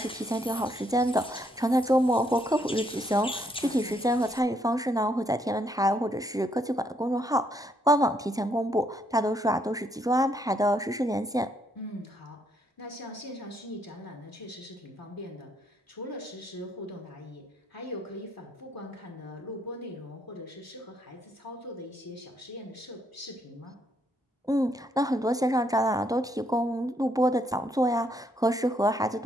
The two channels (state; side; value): normal; both; correlation 0.72